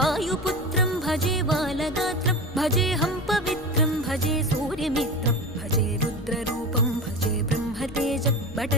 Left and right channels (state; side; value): noise; left; rumble, 17 dB below the sound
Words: भजे बालगात्रं भजेऽहं पवित्रं भजे सूर्यमित्रं भजे रुद्ररूपं भजे ब्रह्मतेजं